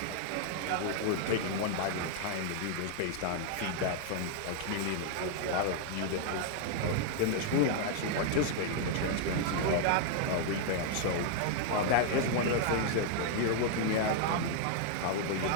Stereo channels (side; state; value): both; different; correlation 0.00